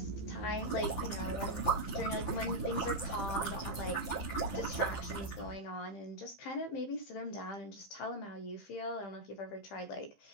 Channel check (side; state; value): right; late; 15 ms